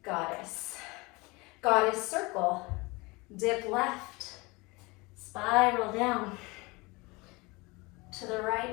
Goddess. Goddess circle. Dip left. Spiral down. To the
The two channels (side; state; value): right; quieter; 24.8 dB